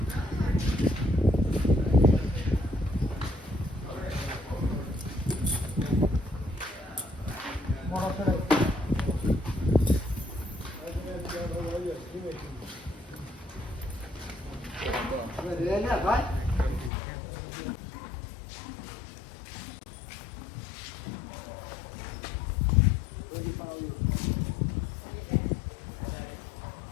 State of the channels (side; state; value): right; drops out; at 16.9 s